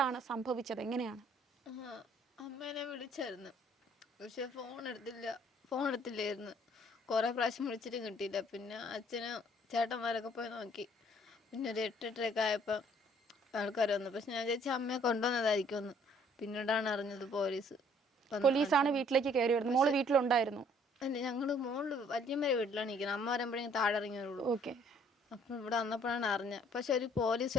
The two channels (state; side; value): normal; both; correlation 0.60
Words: സംഭവിച്ചത്, എങ്ങനെയാണ്? അമ്മേനെ വിളിച്ചായിരുന്നു, പക്ഷെ ഫോൺ എടുത്തില്ലായിരുന്നു. കുറേ പ്രാവശ്യം വിളിച്ചിട്ടും കിട്ടിയില്ല. പിന്നെ അച്ഛനും ചേട്ടന്മാരൊക്കെ പോയി നോക്കി. പിന്നെ ഒരു 8-8:30 ആയപ്പോൾ ആൾക്കാർ വന്നു. പക്ഷെ ഞാൻ ചേച്ചി അമ്മയെ കൊണ്ടുവന്നതായിരിക്കുമെന്ന് പിന്നീടാണ് അറിഞ്ഞത്. പോലീസാണ് വീട്ടിലേക്ക് കയറി വരുന്നത്. മോള് വീട്ടിലുണ്ടായിരുന്നു? അല്ല, ഞങ്ങള് മോള് വല്യമ്മയുടെ വീട്ടിലാണ് ഇരിക്കുന്നത്. അമ്മ വരുമ്പോഴേക്കും താഴെ ഇറങ്ങിയുള്ളൂ. ഓക്കെ. അപ്പം ഇവിടെ വന്നപ്പോഴാണ് അറിഞ്ഞത്. പക്ഷെ ഒരു പോലീസ്